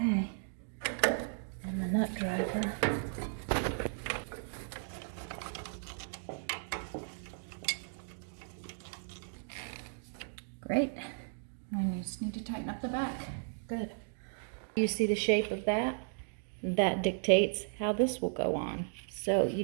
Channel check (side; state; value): left; silent; digital silence